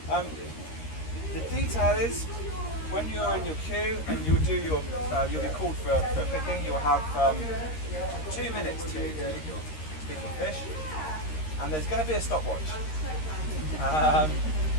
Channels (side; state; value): right; late; 13 ms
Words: The detail is, when you're in your queue and you'll be called for picking, you'll have 2 minutes to do your picking fish, and there's going to be a stopwatch.